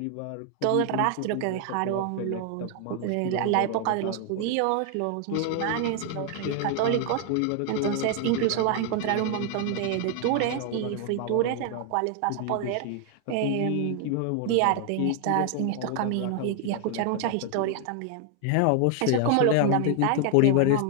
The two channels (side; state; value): both; different; correlation 0.00